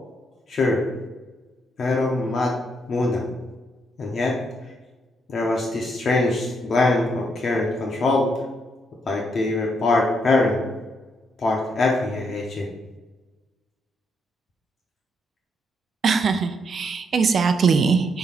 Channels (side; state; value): both; normal; correlation 0.76